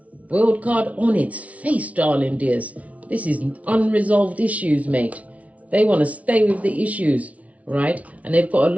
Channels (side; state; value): left; late; 0.067 ms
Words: World card on its face, darling dears. This is unresolved issues, mate. They want to stay with the issues, right? And they've got a